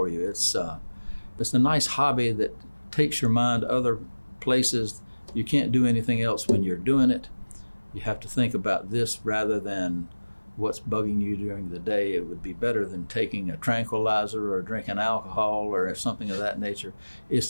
you. It's a nice hobby that takes your mind other places. You can't do anything else when you're doing it. You have to think about this rather than what's bugging you during the day. It would be better than taking a tranquilizer or drinking alcohol or something of that nature.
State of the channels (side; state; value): both; inverted; correlation -1.00